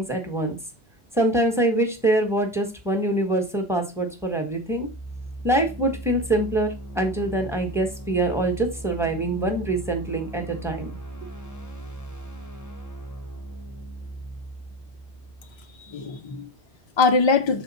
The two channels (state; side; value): normal; both; correlation 0.27